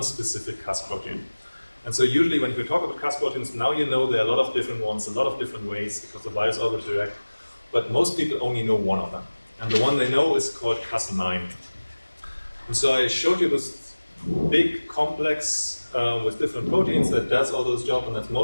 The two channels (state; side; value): inverted; both; correlation -1.00